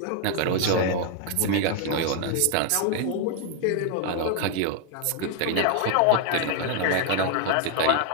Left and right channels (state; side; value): different; both; correlation 0.00